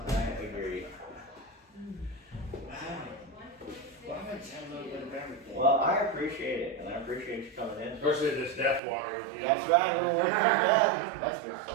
I agree. Well, I'm gonna tell a little bit of everything. Well, I appreciate it, and I appreciate you coming in. Especially this death water. You know. That's right, we're working on that. That's good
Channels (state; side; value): drops out; left; at 8.8 s